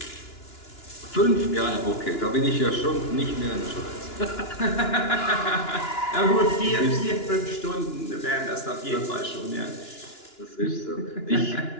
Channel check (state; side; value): late; right; 2.9 ms